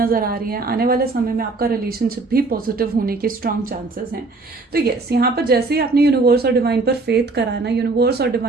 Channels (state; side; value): quieter; left; 3.6 dB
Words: आ रही है। आने वाले समय में आपका रिलेशनशिप भी पॉजिटिव होने के स्ट्रांग चांसेस हैं। तो यस, यहाँ पर जैसे ही आपने यूनिवर्स और डिवाइन पर फेथ करा है ना, यूनिवर्स और